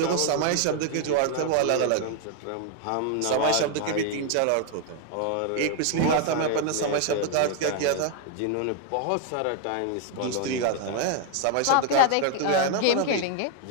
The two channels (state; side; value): different; both; correlation 0.00